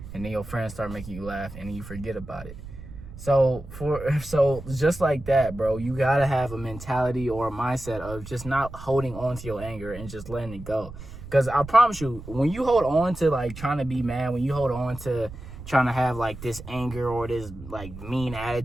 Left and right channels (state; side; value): noise; right; rumble, 13 dB below the sound